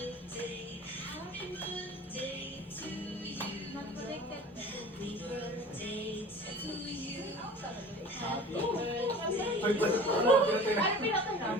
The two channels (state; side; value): normal; both; correlation 0.41